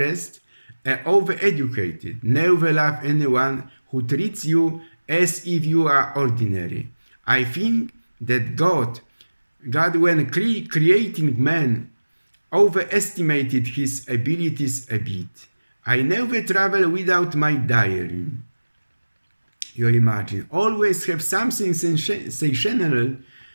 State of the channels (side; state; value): both; inverted; correlation -1.00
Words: and overeducated. Never love anyone who treats you as if you are ordinary. I think that God when creating man, overestimated his abilities a bit. I never travel without my diary. You imagine, always have something sensational